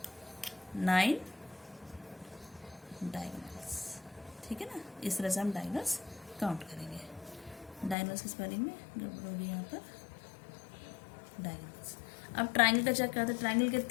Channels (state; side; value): drops out; right; at 8.0 s